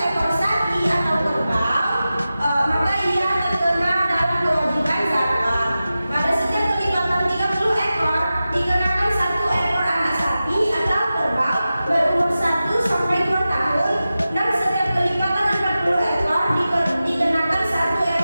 sapi atau kerbau, maka ia terkena dalam kewajiban zakat. Pada setiap kelipatan 30 ekor dikenakan 1 ekor anak sapi atau kerbau berumur 1 sampai 2 tahun, dan setiap kelipatan 40 ekor dikenakan 1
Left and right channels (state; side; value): inverted; both; correlation -0.94